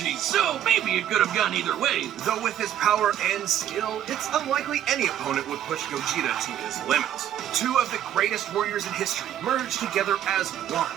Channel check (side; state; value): left; quieter; 10.9 dB